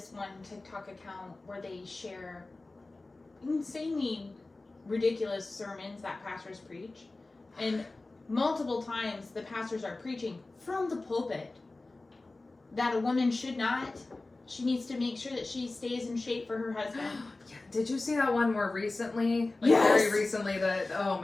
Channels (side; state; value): right; quieter; 3.2 dB